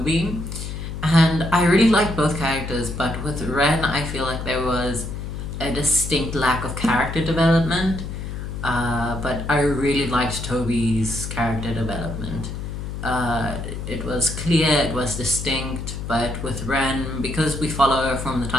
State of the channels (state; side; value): noise; left; hum, 6 dB below the sound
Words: And I really like both characters, but with Ren, I feel like there was a distinct lack of character development. But I really liked Toby's character development. It was clear, it was distinct, but with Ren, because we follow her from the